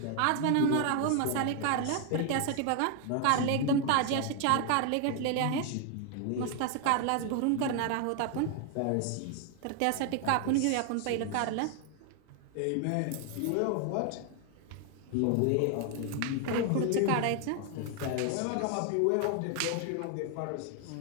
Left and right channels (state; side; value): different; both; correlation 0.00